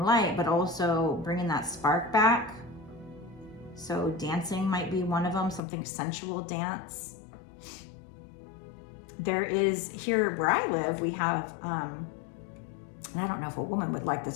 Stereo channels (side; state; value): right; drops out; at 5.6 s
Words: light, but also bringing that spark back. So dancing might be one of them, something sensual dance. There is, here where I live, we have, and I don't know if a woman would like